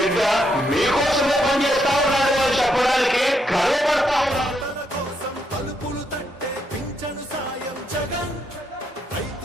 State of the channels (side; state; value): both; normal; correlation 0.77